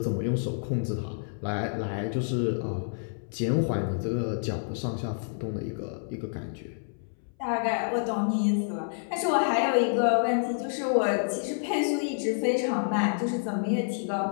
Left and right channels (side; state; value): right; silent; 59 dB below the other